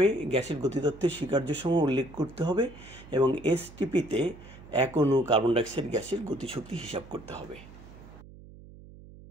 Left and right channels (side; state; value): right; noise; hum, 19 dB below the sound